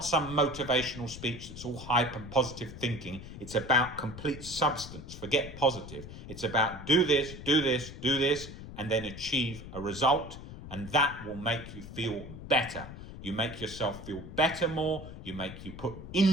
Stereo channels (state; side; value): noise; left; rumble, 12 dB below the sound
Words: some motivational speech that's all hype and positive thinking. It's about complete substance. Forget positive. It's about do this, do this, do this, and then achieve a result. And that will make you feel better. You make yourself feel better more. You put